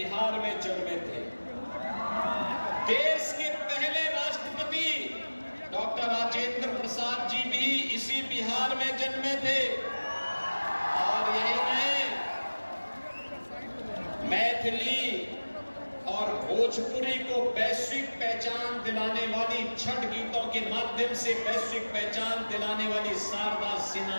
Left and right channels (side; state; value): both; inverted; correlation -1.00